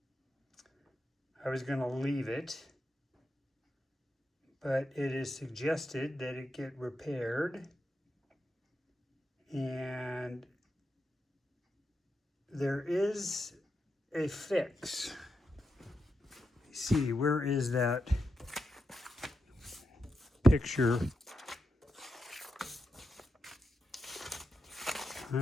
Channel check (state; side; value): normal; both; correlation 0.86